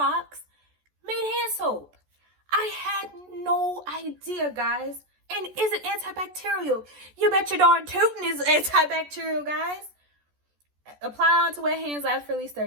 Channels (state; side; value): late; left; 14 ms